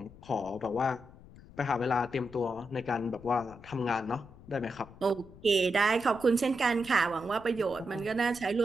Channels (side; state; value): left; noise; rumble, 20 dB below the sound